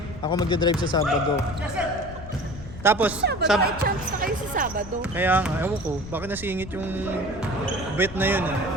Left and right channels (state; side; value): noise; left; rumble, 13 dB below the sound